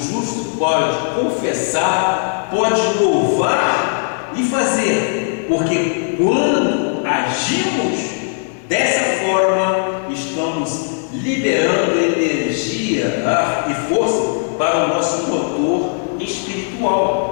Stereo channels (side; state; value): right; silent; digital silence